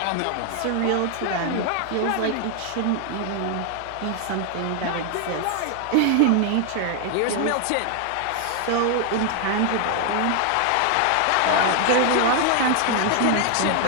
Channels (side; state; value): both; different; correlation 0.00